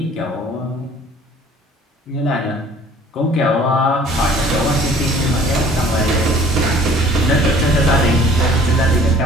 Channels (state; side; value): normal; both; correlation 0.53